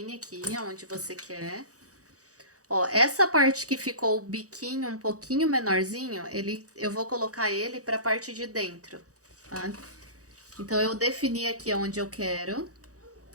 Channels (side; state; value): left; late; 0.66 ms